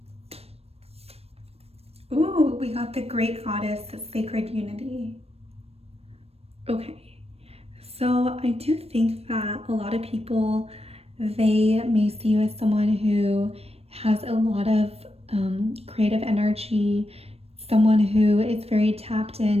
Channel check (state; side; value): late; left; 0.29 ms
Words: Ooh, we got the Great Goddess, Sacred Unity. Okay. So I do think that a lot of people, they may see you as someone who has a lot of creative energy, someone who is very tapped